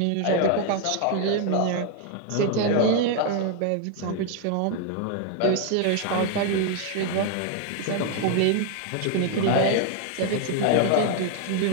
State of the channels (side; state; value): both; different; correlation 0.00